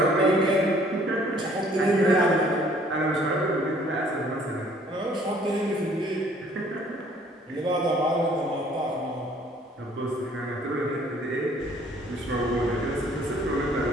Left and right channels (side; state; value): both; normal; correlation 0.59